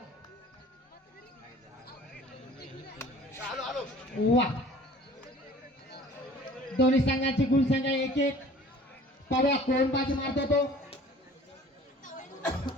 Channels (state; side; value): normal; both; correlation 0.48